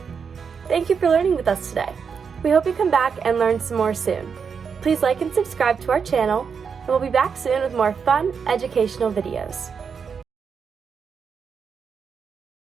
Thank you for learning with us today. We hope you come back and learn some more soon. Please like and subscribe to our channel, and we'll be back soon with more fun, educational videos.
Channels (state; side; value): quieter; left; 6.2 dB